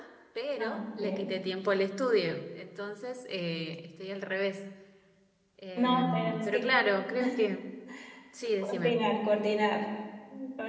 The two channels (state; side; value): identical; both; correlation 1.00